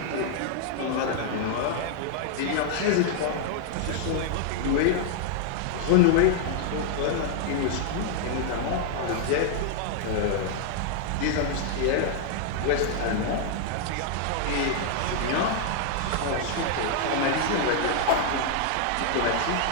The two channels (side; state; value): both; different; correlation 0.00